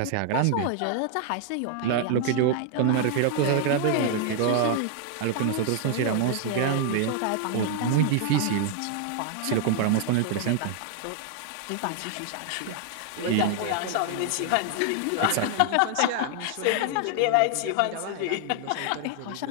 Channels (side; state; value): both; different; correlation 0.00